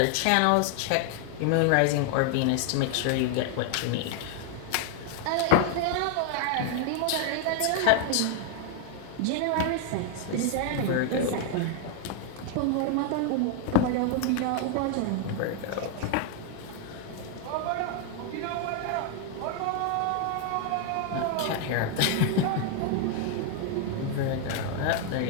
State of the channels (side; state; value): both; different; correlation 0.00